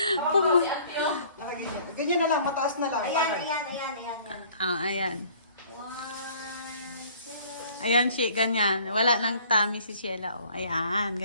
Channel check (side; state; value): both; inverted; correlation -0.54